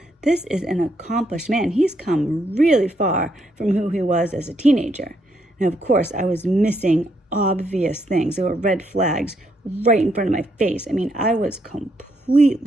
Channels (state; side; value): normal; both; correlation 0.75